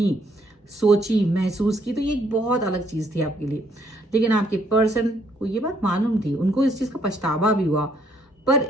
सोची, महसूस की, तो ये एक बहुत अलग चीज थी आपके लिए। लेकिन आपके पर्सन को ये बात मालूम थी, उनको इस चीज का पछतावा भी हुआ, पर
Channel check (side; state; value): both; normal; correlation 0.69